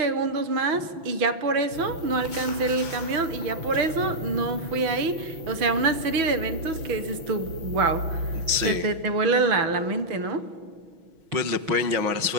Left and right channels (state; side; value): late; left; 6.1 ms